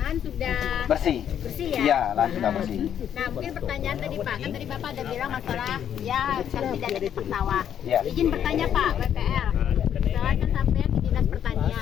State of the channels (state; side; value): quieter; right; 9.5 dB